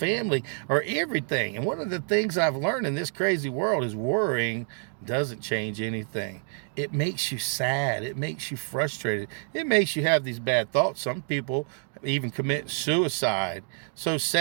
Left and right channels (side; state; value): left; silent; 59 dB below the other